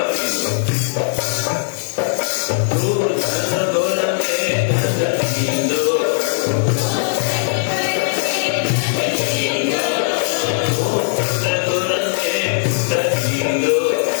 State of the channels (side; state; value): right; silent; digital silence